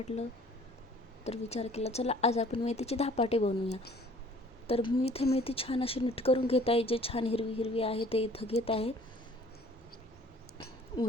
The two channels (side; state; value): both; normal; correlation 0.54